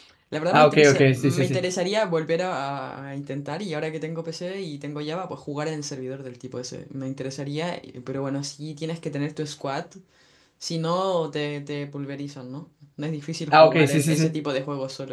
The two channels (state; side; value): identical; both; correlation 1.00